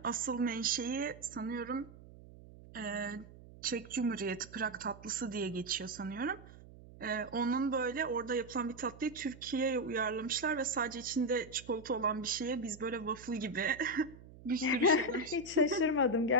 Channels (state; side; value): noise; right; hum, 19 dB below the sound